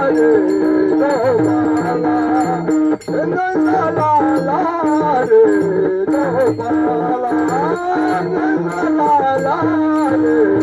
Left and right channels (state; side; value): identical; both; correlation 1.00